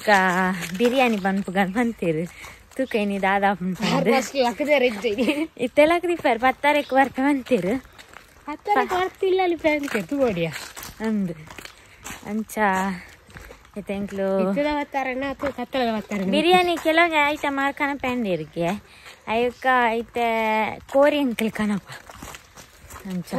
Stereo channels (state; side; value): identical; both; correlation 1.00